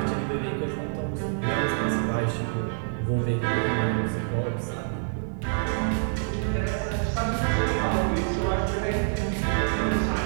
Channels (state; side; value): silent; left; digital silence